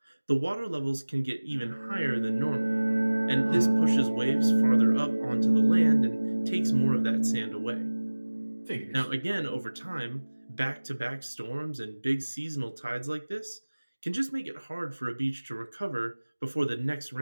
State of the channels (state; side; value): inverted; both; correlation -1.00